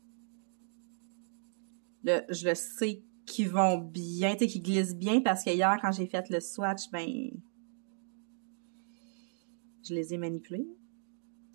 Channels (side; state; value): left; silent; digital silence